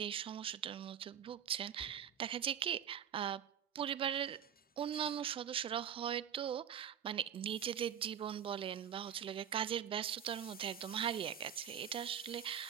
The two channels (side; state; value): left; quieter; 8.9 dB